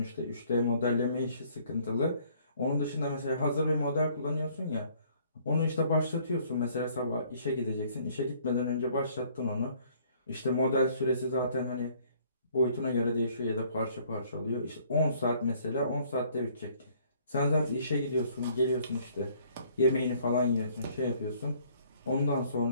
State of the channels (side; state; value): both; inverted; correlation -0.60